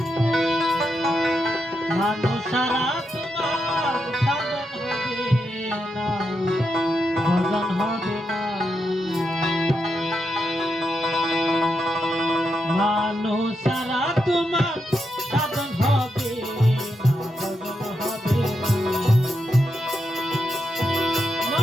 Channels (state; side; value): normal; both; correlation 0.84